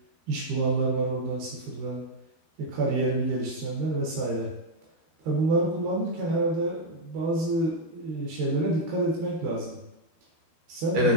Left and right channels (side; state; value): left; late; 12 ms